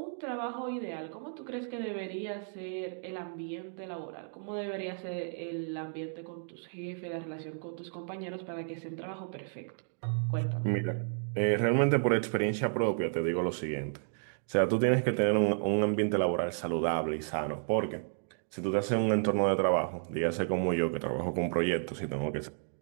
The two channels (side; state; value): left; silent; digital silence